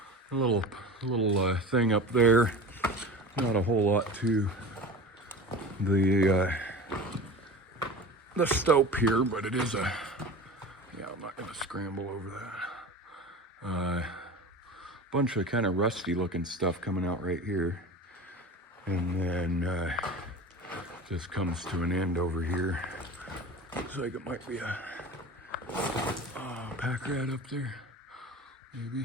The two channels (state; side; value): normal; both; correlation 0.34